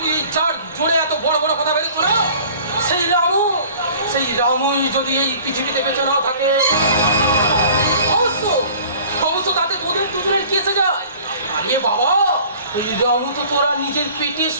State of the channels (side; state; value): both; inverted; correlation -0.49